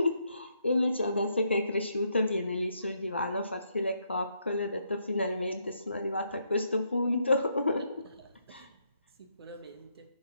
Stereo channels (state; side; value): inverted; both; correlation -0.77